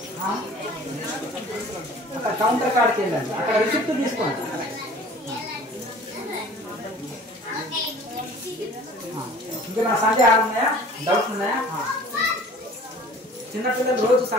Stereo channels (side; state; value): both; normal; correlation 0.47